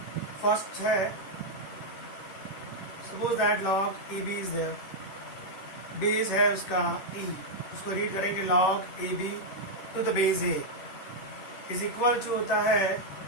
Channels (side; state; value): right; late; 10 ms